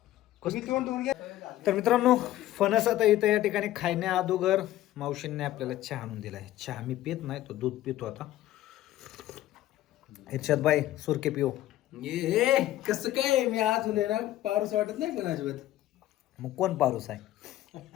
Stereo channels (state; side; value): quieter; right; 14.3 dB